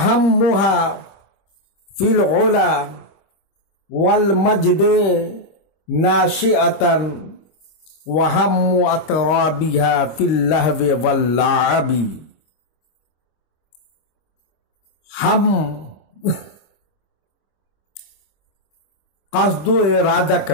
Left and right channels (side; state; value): right; late; 25 ms